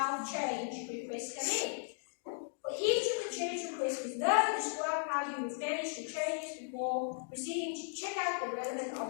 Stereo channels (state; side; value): silent; right; digital silence